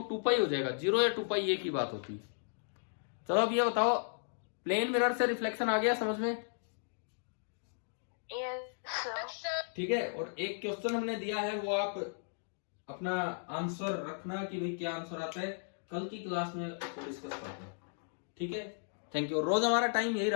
2π हो जाएगा। 0 या 2π एक ही बात होती है। चलो अब ये बताओ, प्लेन मिरर से रिफ्लेक्शन आ गया समझ में? Yes sir. ठीक है। और एक क्वेश्चन हमने दिया है, वो आप अपना आंसर रखना कि भाई क्या आंसर आता है, कल की क्लास में डिस्कस करते हैं। ठीक है, थैंक यू। रोज हमारा टाइम यही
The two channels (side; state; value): right; silent; digital silence